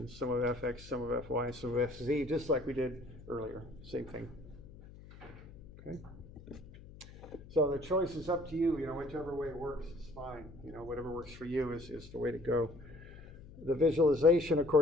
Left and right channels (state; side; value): noise; left; hum, 18 dB below the sound